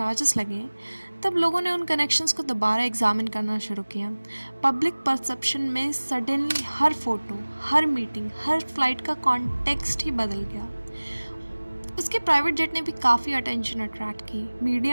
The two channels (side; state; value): both; inverted; correlation -1.00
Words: लगे तब लोगों ने उन कनेक्शंस को दोबारा एग्जामिन करना शुरू किया। पब्लिक परसेप्शन में सडनली हर फोटो, हर मीटिंग, हर फ्लाइट का कॉन्टेक्स्ट ही बदल गया। उसके प्राइवेट जेट ने भी काफ़ी अटेंशन अट्रैक्ट की।